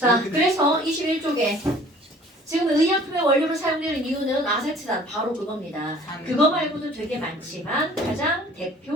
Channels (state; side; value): normal; both; correlation 0.51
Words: 그래서 21쪽에 지금 의약품의 원료로 사용되는 이유는 아세트산 바로 그겁니다. 그거 말고도 되게 많지만 가장